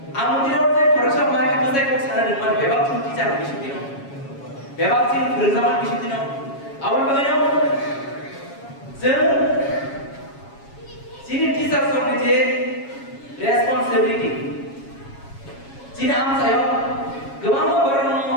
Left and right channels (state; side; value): late; right; 7.3 ms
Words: amu tidak ada perasaan mereka bisa ikut sana dengan bebas pun teacher di situ no, bebas sih bersama di situ no, awal bagaimana? Jadi teacher soalnya je responsibility. Cina am saya, kemana berano